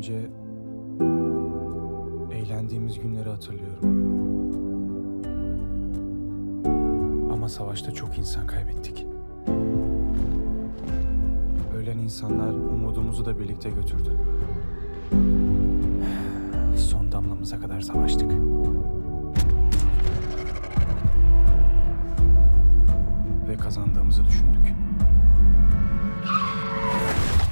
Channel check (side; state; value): both; inverted; correlation -1.00